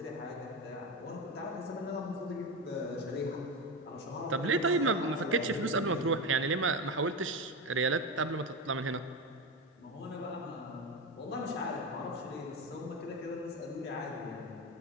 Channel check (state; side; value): normal; both; correlation 0.17